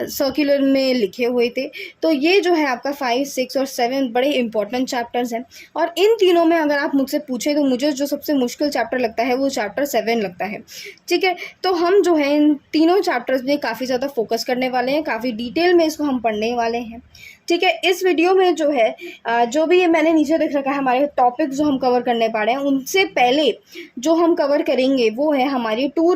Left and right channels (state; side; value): identical; both; correlation 1.00